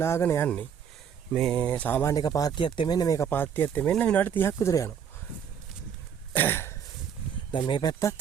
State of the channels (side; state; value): left; quieter; 7.8 dB